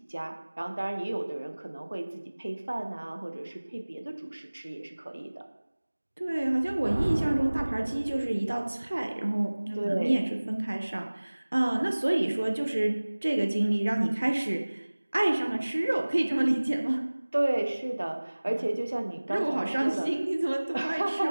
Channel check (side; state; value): both; inverted; correlation -1.00